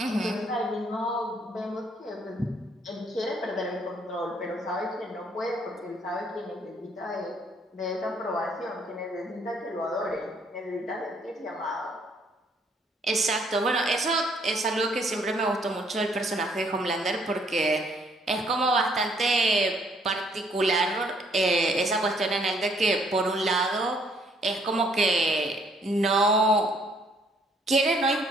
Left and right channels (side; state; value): both; normal; correlation 0.66